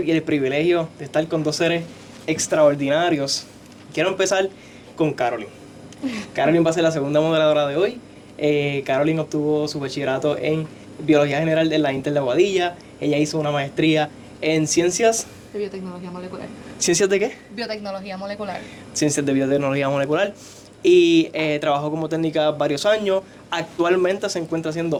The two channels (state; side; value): identical; both; correlation 1.00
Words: el privilegio de estar con dos seres extraordinarios. Quiero empezar con Caroline. Caroline va a ser la segunda moderadora de hoy. Caroline obtuvo su bachillerato en Biología General de la Inter de Aguadilla. Ella hizo una maestría en Ciencias... De biotecnología molecular. ¿Ciencias de qué? Biotecnología molecular. Ciencias de Biotecnología Molecular. Y trabajó como técnica varios años. Actualmente se encuentra